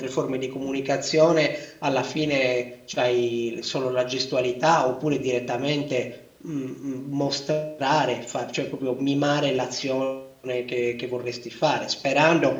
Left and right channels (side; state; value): both; identical; correlation 1.00